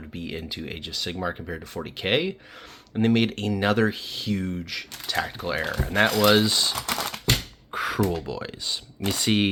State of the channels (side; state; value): both; identical; correlation 1.00